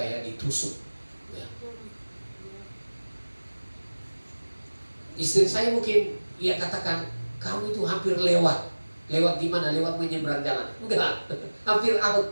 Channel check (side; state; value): both; inverted; correlation -1.00